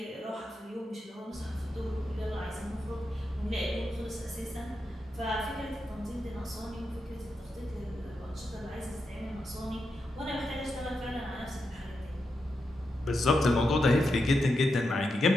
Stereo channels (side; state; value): both; normal; correlation 0.86